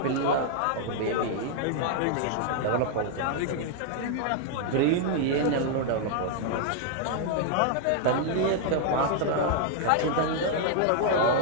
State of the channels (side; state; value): both; different; correlation 0.00